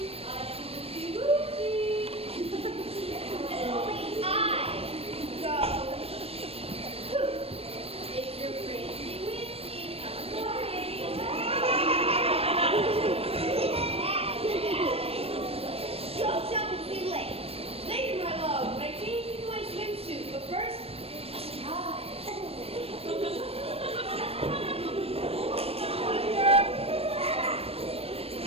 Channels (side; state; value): left; late; 0.28 ms